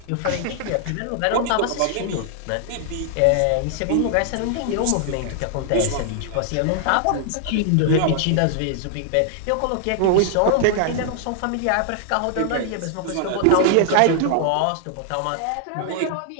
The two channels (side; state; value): both; different; correlation 0.00